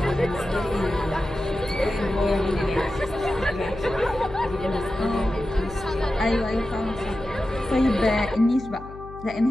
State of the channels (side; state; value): left; noise; hum, 15 dB below the sound